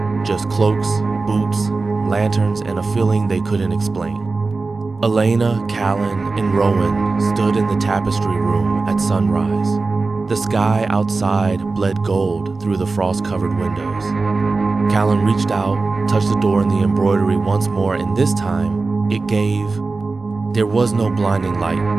just cloaks, boots, lanterns, and a feeling they couldn't explain. Elena, Callan, and Rowan stood in the tapestry room at sunrise. The sky outside bled gold through the frost-covered windows. Callan reached out, touched the door and the embroidery once more, and this time, there was no blinding light,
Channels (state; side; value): quieter; left; 3.8 dB